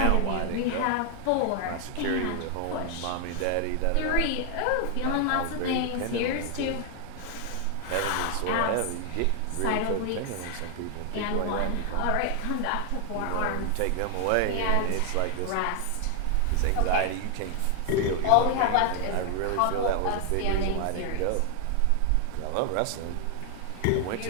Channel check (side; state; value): both; different; correlation 0.00